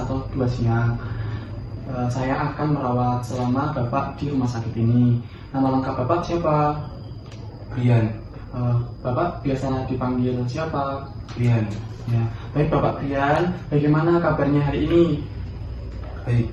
2 siang. Saya akan merawat selama Bapak di rumah sakit ini. Nama lengkap Bapak siapa? Brian. Bapak biasa dipanggil siapa? Brian. Ya, baik Bapak Brian, bagaimana kabarnya hari ini? Baik.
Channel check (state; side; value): identical; both; correlation 1.00